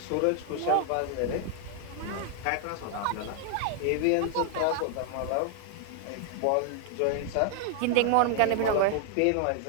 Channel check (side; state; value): both; different; correlation 0.00